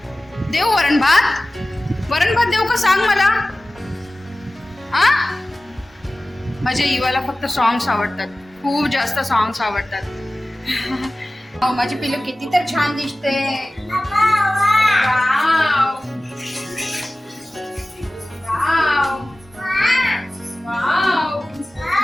देऊ वरण भात? वरण भात देऊ का सांग मला? आ माझ्या इवाला फक्त सॉंग्स आवडतात, खूप जास्त सॉंग्स आवडतात. माझी पिल्लू किती तर छान दिसते. Wow wow wow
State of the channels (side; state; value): both; normal; correlation 0.97